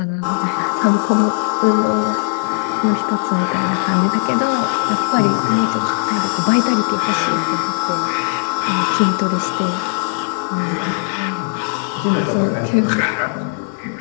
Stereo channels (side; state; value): right; silent; digital silence